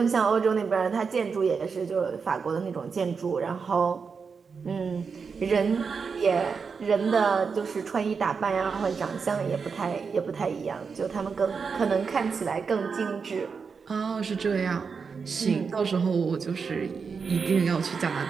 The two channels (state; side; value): quieter; left; 5.5 dB